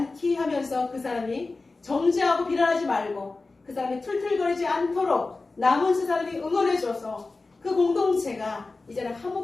하면서 그 사람이 정죄하고 비난하지 말고 그 사람이 툴툴거리지 않도록 남은 세 사람이 응원해줘서 그 공동체가 이제는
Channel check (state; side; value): quieter; right; 3.6 dB